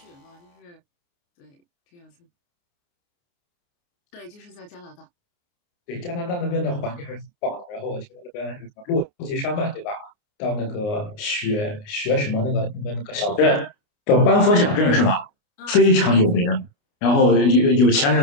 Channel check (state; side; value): late; right; 29 ms